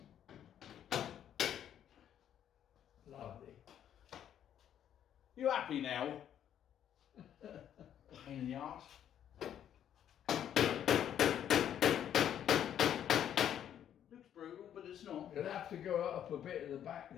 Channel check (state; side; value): quieter; right; 10.0 dB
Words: Lovely. You happy now? Pain in the arse. Looks brutal, but it's not. You'll have to go up a bit at the back